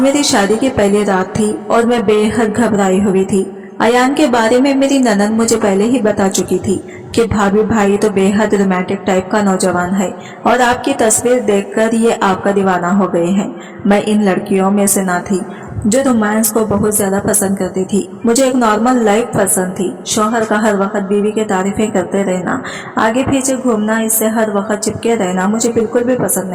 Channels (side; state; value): both; identical; correlation 1.00